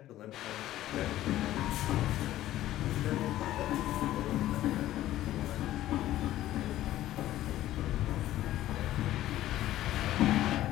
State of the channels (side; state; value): right; quieter; 14.1 dB